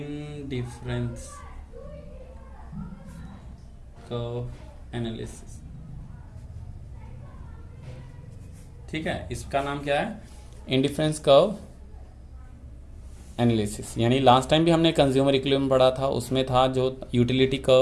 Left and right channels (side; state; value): both; identical; correlation 1.00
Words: कर्व एनालिसिस। ठीक है, इसका नाम क्या है? Indifference curve analysis. यानी लास्ट टाइम भी हमने कंज्यूमर इक्विलिब्रियम पढ़ा था, उसमें था जो यूटिलिटी